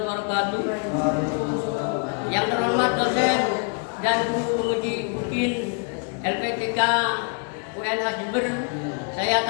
wabarakatuh. Yang terhormat dosen dan guru penguji UPIN LPTK UNH Jember, saya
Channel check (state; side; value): quieter; right; 38.5 dB